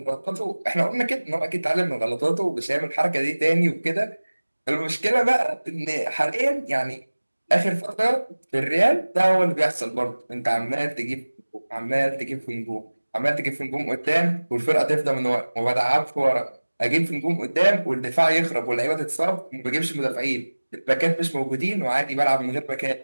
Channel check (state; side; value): inverted; both; correlation -1.00